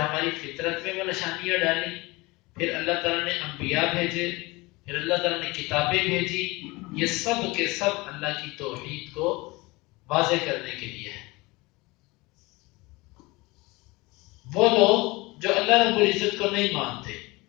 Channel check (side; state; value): right; quieter; 23.1 dB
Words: فطرت میں وہ نشانیاں ڈالی، پھر اللہ تعالیٰ نے انبیاء بھیجے، پھر اللہ تعالیٰ نے کتابیں بھیجی. یہ سب کے سب اللہ کی توحید کو واضح کرنے کے لیے ہے. وہ لوگ جو اللہ رب العزت کو نہیں مانتے،